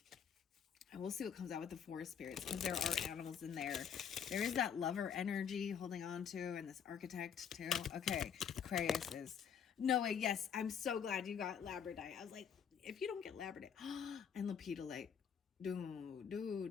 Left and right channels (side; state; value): right; quieter; 7.6 dB